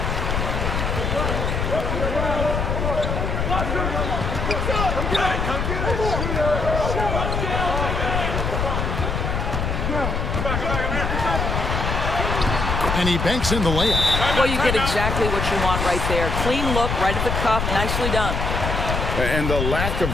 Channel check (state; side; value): noise; left; rumble, 1 dB below the sound